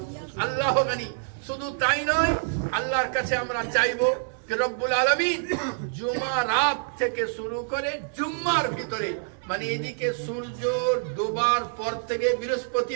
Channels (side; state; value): left; silent; digital silence